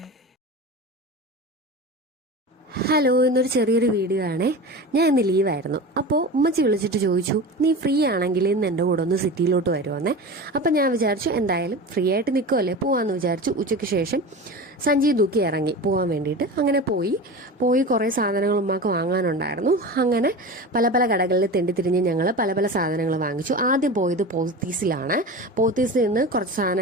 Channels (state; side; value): normal; both; correlation 0.30